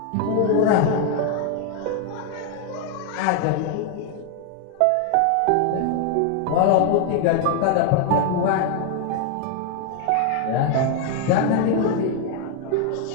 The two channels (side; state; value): both; different; correlation 0.00